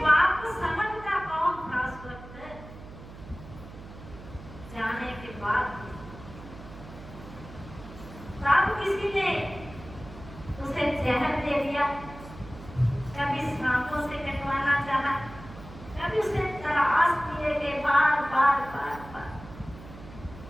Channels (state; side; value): noise; right; hum, 16 dB below the sound